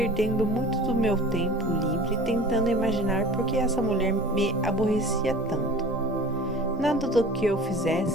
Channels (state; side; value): noise; left; rumble, 24 dB below the sound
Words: muito do meu tempo livre tentando imaginar por que essa mulher me aborrecia tanto. Nada do que eu